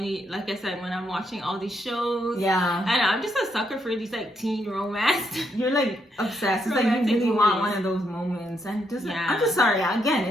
like I said, when I'm watching all these shows, and I'm just a sucker for these like teen romance. You're like obsessed. It's like you really want one of those moments, and just I'm just sorry. Again,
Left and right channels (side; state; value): both; normal; correlation 0.77